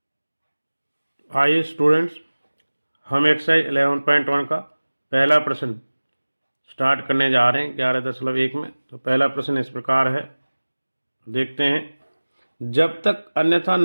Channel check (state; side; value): inverted; both; correlation -1.00